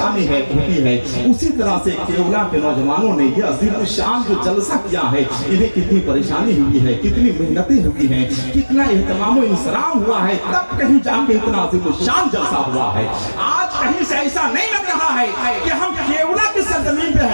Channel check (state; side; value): inverted; both; correlation -1.00